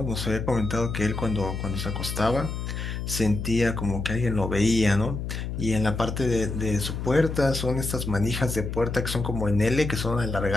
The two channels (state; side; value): noise; left; hum, 4 dB below the sound